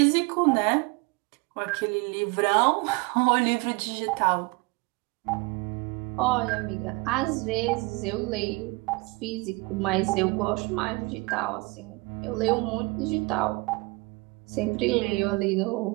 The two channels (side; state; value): left; quieter; 26.1 dB